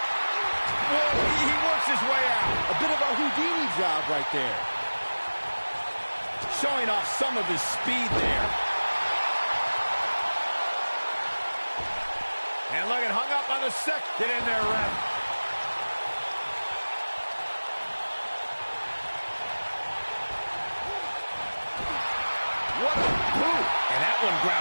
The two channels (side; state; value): both; inverted; correlation -1.00